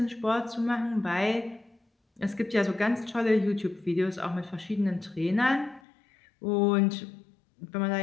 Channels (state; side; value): drops out; right; at 5.8 s